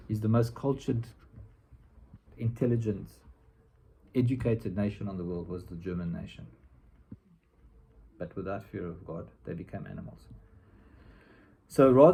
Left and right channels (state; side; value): identical; both; correlation 1.00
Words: He's the most cultured, intelligent, educated nation on the world was the German nation. But without fear of God, they became animals. So